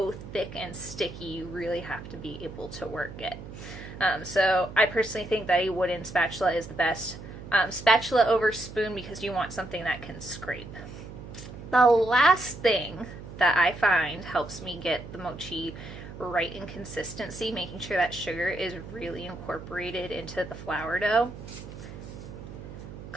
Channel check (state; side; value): noise; right; hum, 13 dB below the sound